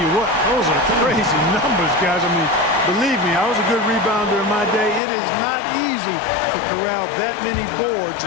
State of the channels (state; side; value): drops out; right; at 5.0 s